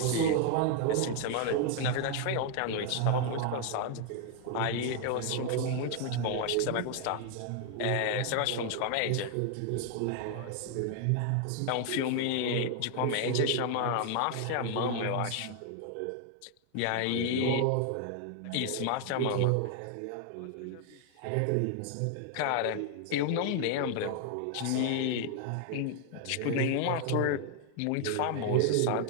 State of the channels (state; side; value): different; both; correlation 0.00